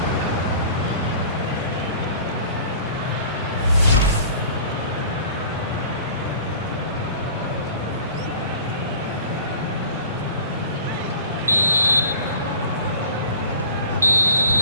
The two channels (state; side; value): inverted; both; correlation -0.45